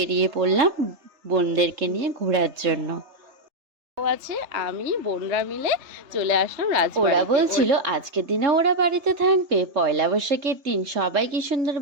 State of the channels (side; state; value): left; late; 3.3 ms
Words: পড়লাম বোনদেরকে নিয়ে ঘোরার জন্য। আছে আমি বোনরা মিলে চলে আসলাম রাজবাড়িতে। ওরা বলছিল আজকের দিনে ওরা বাড়িতে থাকবে, পয়লা বৈশাখের দিন সবাই কি সুন্দর